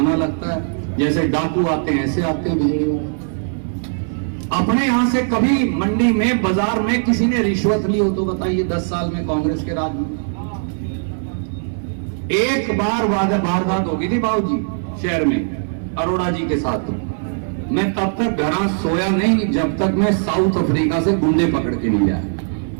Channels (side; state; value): left; silent; 66 dB below the other